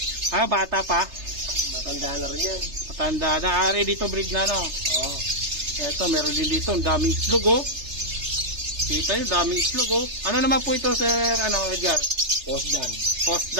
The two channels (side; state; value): left; late; 3.3 ms